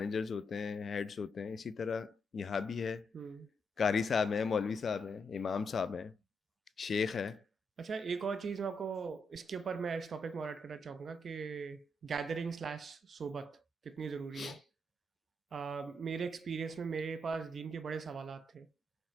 हैं, हेड्स होते हैं, इसी तरह यहाँ भी है। कारी साहब हैं, मौलवी साहब हैं, इमाम साहब हैं, शेख है, अच्छा, एक और चीज़ मैं आपको इसके ऊपर मैं इस टॉपिक में और ऐड करना चाहूँगा कि गैदरिंग स्लैश सोबत कितनी ज़रूरी है। मेरे एक्सपीरियंस में मेरे पास दीन के बड़े सवालात थे,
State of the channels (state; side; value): normal; both; correlation 0.80